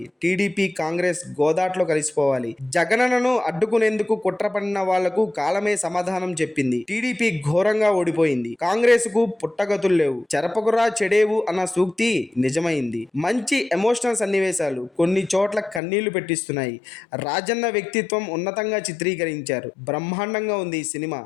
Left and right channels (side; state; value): right; drops out; at 15.8 s